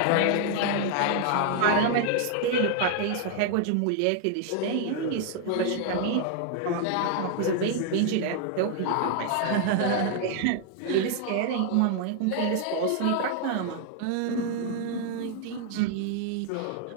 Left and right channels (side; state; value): both; different; correlation 0.00